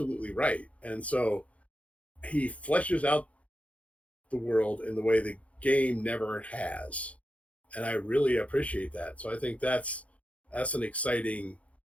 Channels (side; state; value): right; late; 0.065 ms